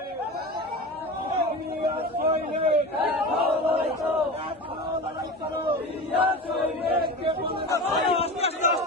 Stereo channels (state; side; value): normal; both; correlation 0.29